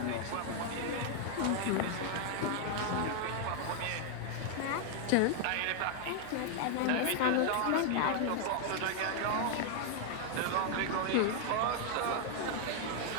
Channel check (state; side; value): different; both; correlation 0.00